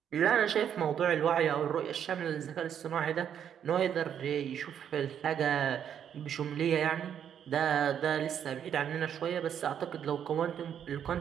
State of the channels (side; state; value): left; quieter; 8.9 dB